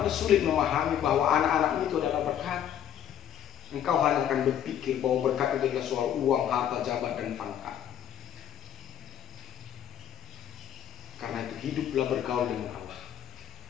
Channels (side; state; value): right; quieter; 10.1 dB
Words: sulit memahami bahwa anak-anakmu itu adalah berkat. Engkau hanya akan berpikir bahwa berkat itu adalah soal uang, harta, jabatan, dan pangkat. Karena itu hiduplah bergaul dengan Allah.